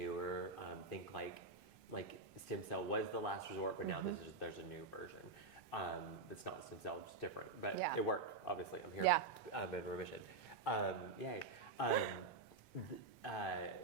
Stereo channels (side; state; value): left; quieter; 4.1 dB